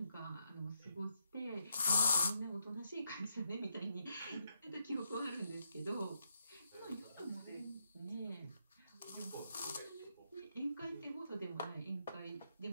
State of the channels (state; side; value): inverted; both; correlation -0.80